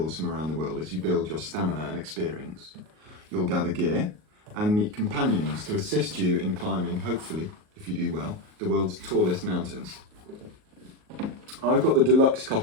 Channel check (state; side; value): late; left; 38 ms